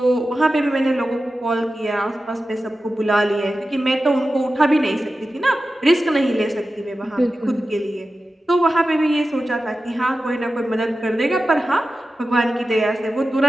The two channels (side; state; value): both; normal; correlation 0.93